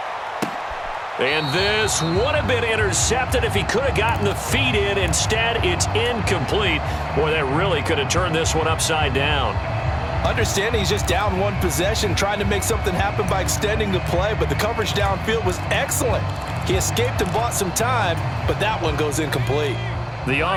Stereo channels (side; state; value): both; identical; correlation 1.00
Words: And this would have been intercepted if he could have gotten the feet in. Instead, it's incomplete. Boy, that really could have turned this one upside down. Understanding he's just down one possession, trying to make something happen by extending the play, but the coverage downfield was excellent. He escaped and bought some time, but that one goes incomplete. The